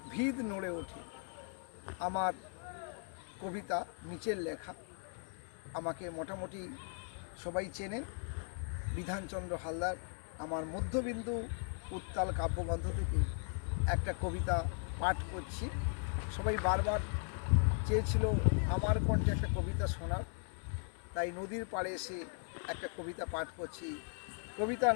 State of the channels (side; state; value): right; silent; 53 dB below the other